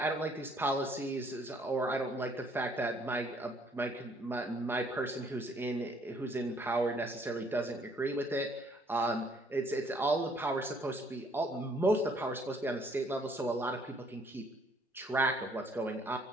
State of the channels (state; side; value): normal; both; correlation 0.63